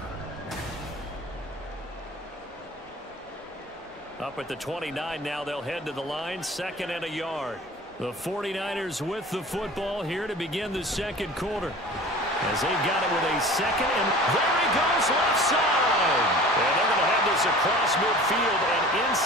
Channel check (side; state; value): both; normal; correlation 0.42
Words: Up at the 29 now, they'll head to the line, 2nd and a yard. The 49ers with the football here to begin the second quarter. As they've got it with a second, and there he goes left side. And they're going to have this across midfield and